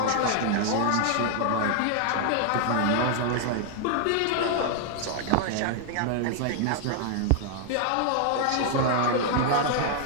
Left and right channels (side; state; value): both; different; correlation 0.00